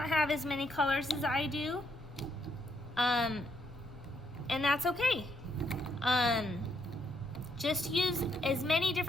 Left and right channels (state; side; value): normal; both; correlation 0.74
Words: have as many colors as I do, and that's okay. Just use as many